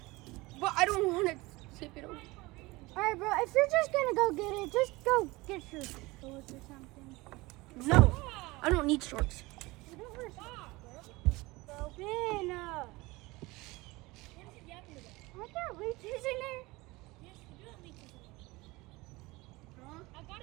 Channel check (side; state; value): left; quieter; 22.0 dB